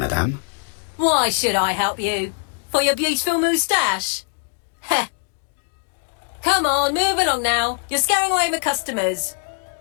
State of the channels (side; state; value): right; silent; 64 dB below the other